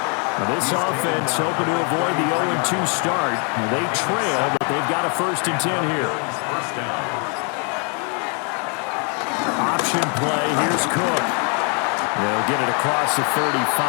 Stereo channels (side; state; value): right; quieter; 37.5 dB